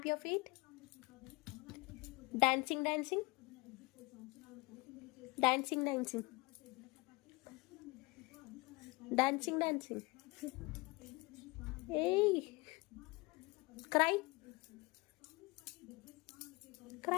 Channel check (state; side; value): quieter; right; 24.7 dB